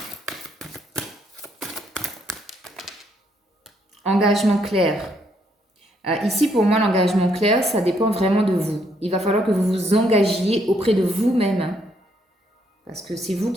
Engagement clair. Ici, pour moi, l'engagement clair, ça dépend vraiment de vous. Il va falloir que vous vous engagiez auprès de vous-même. Hein, parce que c'est vous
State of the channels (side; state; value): both; normal; correlation 0.72